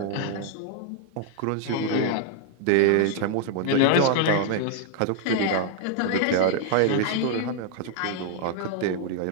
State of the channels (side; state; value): both; different; correlation 0.00